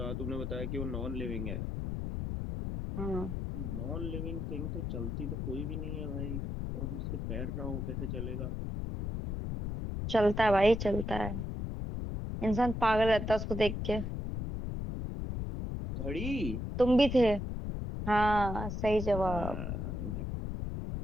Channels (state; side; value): noise; left; rumble, 3 dB below the sound